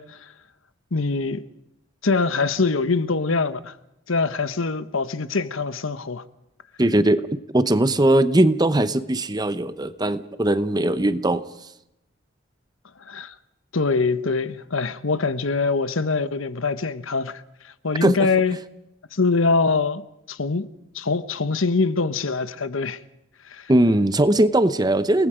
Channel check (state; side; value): normal; both; correlation 0.42